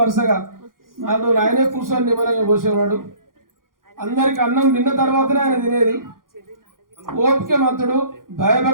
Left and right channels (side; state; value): left; late; 0.90 ms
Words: వరుసగా 4 రోజులు ఆయనే కూర్చొని నిమ్మలంగా పోసేవాడు. అందరికి అన్నం తిన్న తర్వాతనే ఆయన తినేది. ఓపికమంతుడు,